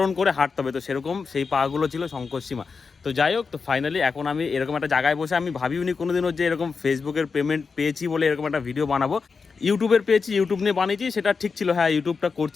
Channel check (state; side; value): quieter; right; 5.0 dB